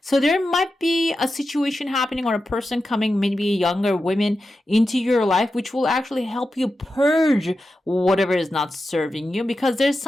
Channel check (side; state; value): both; normal; correlation 0.91